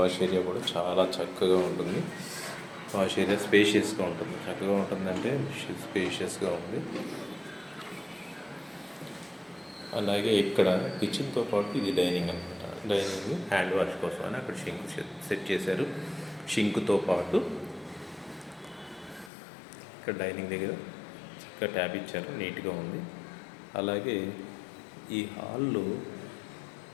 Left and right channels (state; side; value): drops out; right; at 19.3 s